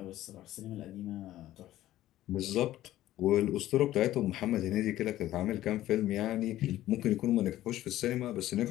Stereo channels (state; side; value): quieter; right; 14.3 dB